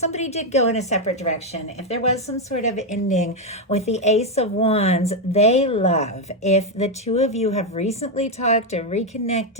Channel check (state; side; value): normal; both; correlation 0.04